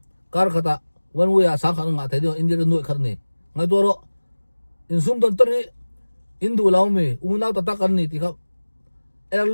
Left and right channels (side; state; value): both; inverted; correlation -1.00